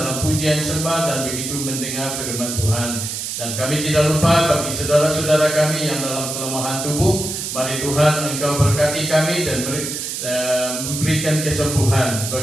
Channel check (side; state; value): right; noise; hiss, 5 dB below the sound